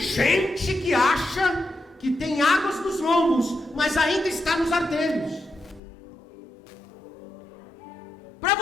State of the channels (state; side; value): drops out; right; at 5.8 s